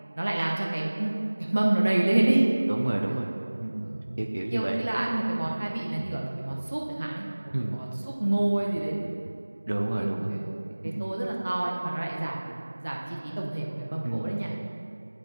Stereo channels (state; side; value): inverted; both; correlation -1.00